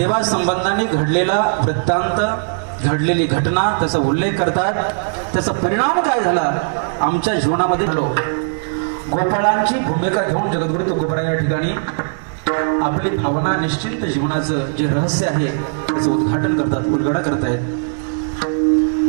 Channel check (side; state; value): left; silent; 67 dB below the other